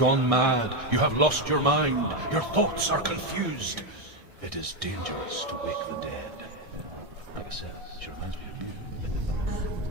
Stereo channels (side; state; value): left; late; 1.6 ms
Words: mad. You have lost your mind. Your thoughts are confused. It is dangerous to wake the dead. Like I said, she reminds me of you.